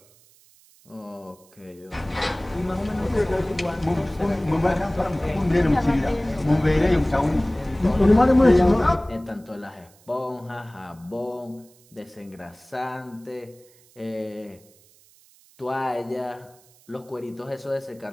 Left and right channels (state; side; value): noise; right; hiss, 29 dB below the sound